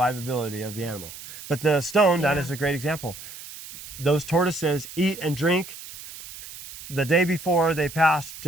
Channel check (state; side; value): noise; right; hiss, 14 dB below the sound